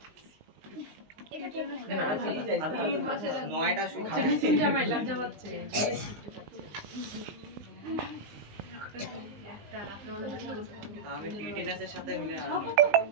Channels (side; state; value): left; late; 20 ms